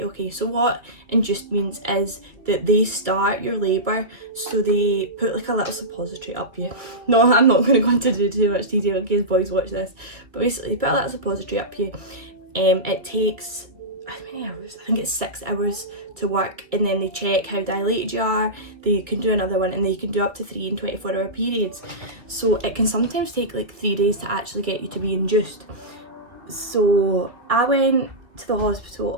okay. So what induced means is that they start your labour, so they put like a little suppository up you. No, I'm not going to go into too much detail in case boys watch this. But basically, they put a little suppository up you. It takes, how many hours? I think it's 6 hours to work, and then they check how dilated you are. They can do another one, and they can do up to 3 and 24-hour periods. So it can sometimes take like 3 days to actually get you to be induced. So I went to the hospital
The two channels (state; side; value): late; left; 2.0 ms